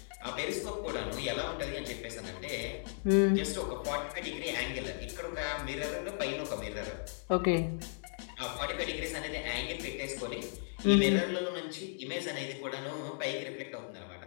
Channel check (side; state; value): right; silent; digital silence